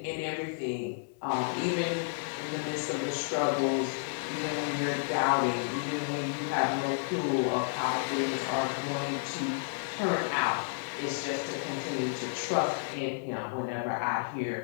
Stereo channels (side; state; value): right; silent; 57 dB below the other